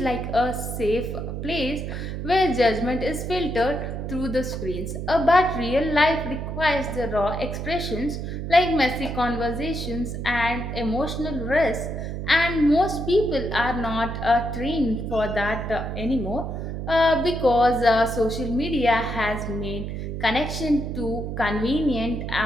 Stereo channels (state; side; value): noise; right; hum, 5 dB below the sound